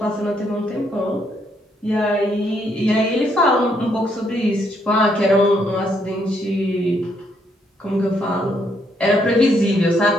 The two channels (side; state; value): both; normal; correlation 0.73